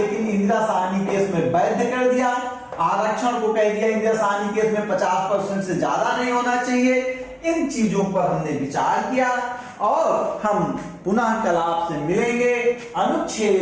इंदिरा साहनी केस में वैध कर दिया। आरक्षण को कह दिया इंदिरा साहनी केस में 50% से ज्यादा नहीं होना चाहिए। इन चीजों पर हमने विचार किया और हम पुनः कल आपसे मिलेंगे,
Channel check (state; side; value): identical; both; correlation 1.00